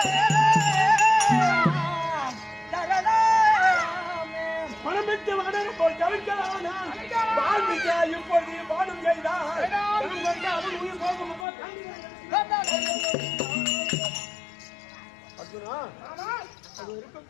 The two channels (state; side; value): drops out; right; at 11.5 s